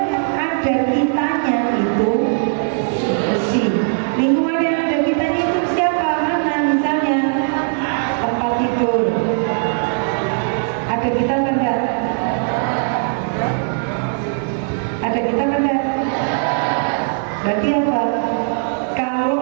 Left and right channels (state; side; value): silent; left; 61 dB below the other